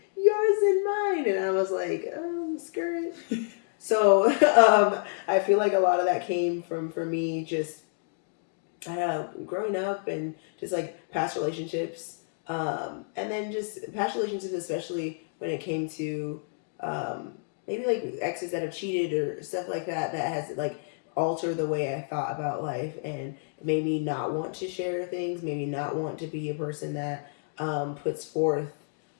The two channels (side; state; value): right; silent; digital silence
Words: yours and mine. And I was like, skirt. So I feel like a lot of that came from, for me, just growing up and just like past relationships. And then just past relationships, especially when it came to maybe like exes that have cheated or stuff like that, that has like alter the way I thought about life and made me not want to share things, maybe not want to be a person that puts